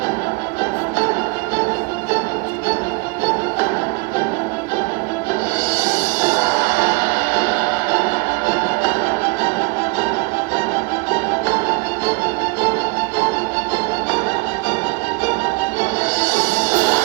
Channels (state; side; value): quieter; left; 28.3 dB